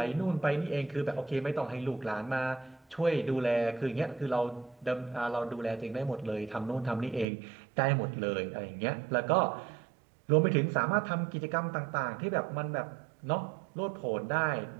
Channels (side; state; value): left; drops out; at 7.2 s